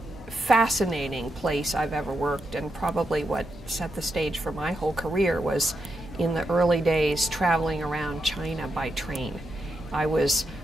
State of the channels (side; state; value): both; normal; correlation 0.84